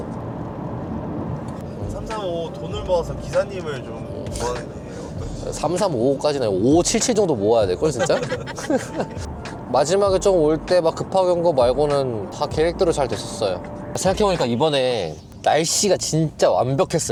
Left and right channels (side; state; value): both; identical; correlation 1.00